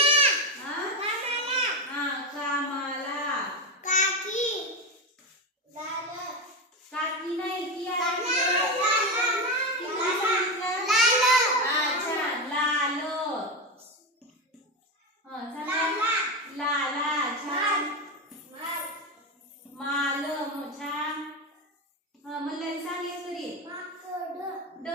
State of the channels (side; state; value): both; normal; correlation 0.14